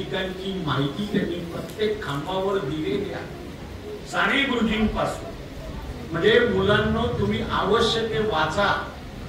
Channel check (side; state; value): both; identical; correlation 1.00